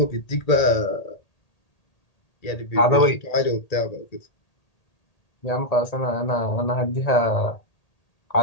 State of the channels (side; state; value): right; late; 1.8 ms